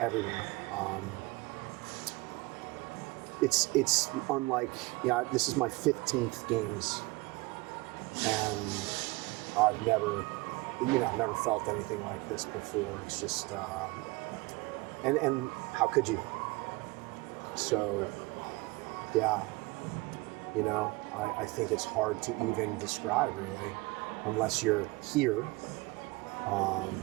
It's unlike, this is my 15th games, and I've never felt anything like this before. It's just, and how could you? So, yeah, I think it's hard to even describe really, unless you're here,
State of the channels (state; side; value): quieter; left; 22.4 dB